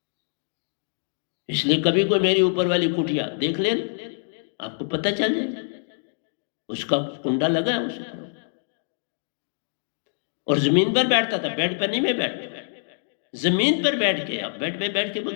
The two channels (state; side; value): silent; right; digital silence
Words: इसलिए कभी कोई मेरी ऊपर वाली कुटिया देख लेना, आपको पता चल जाए उसका कुंडा लगा है उसे। और जमीन पर बैठता था, बेड पर नहीं मैं बैठता, जमीन पर बैठ के। आप बेड पे बैठ के